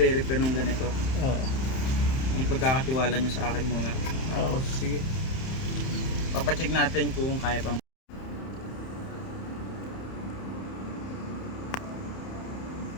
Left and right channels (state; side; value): late; right; 31 ms